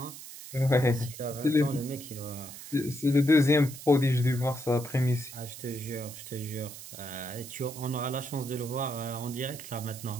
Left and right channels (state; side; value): noise; right; hiss, 13 dB below the sound